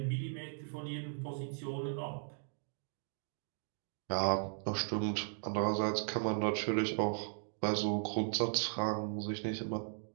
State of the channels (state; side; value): silent; left; digital silence